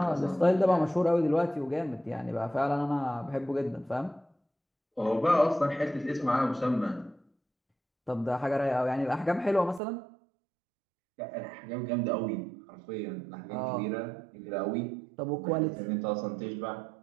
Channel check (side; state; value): left; drops out; at 9.8 s